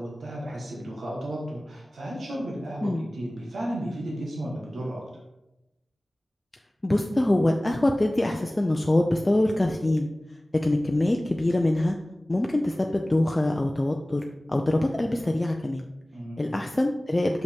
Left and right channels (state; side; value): normal; both; correlation 0.98